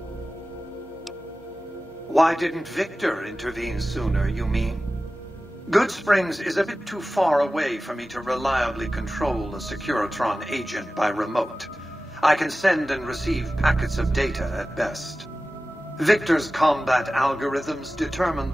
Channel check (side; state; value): both; normal; correlation 0.96